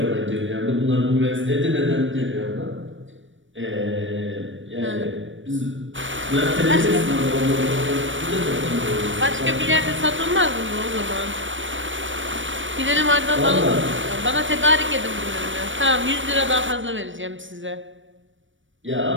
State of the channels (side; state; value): left; late; 0.56 ms